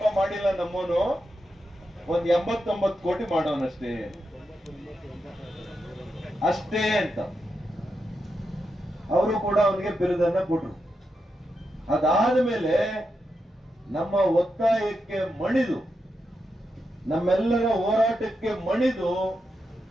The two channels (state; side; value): normal; both; correlation 0.86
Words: ಮಾಡಿಲ್ಲ ನಮ್ಮವನು, ಒಂದ್ 89 ಕೋಟಿ ಮಾಡೋನಷ್ಟೇ ಅಷ್ಟೇ ಅಂತ ಅವರು ಕೂಡ ಅವನಿಗೆ ಬಿರುದನ್ನ ಕೊಟ್ರು. ಅದಾದ ಮೇಲೆ ನಮ್ಮ ಒತ್ತಾಯಕ್ಕೆ ಮಣಿದು, ನಮ್ಮೆಲ್ಲರ ಹೋರಾಟಕ್ಕೆ ಮಣಿದು